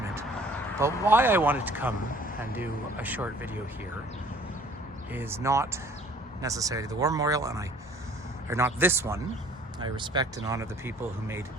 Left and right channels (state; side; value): normal; both; correlation 0.54